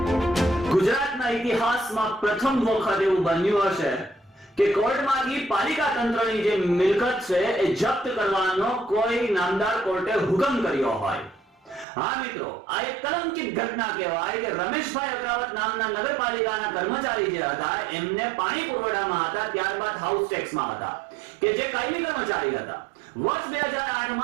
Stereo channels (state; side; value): drops out; left; at 11.9 s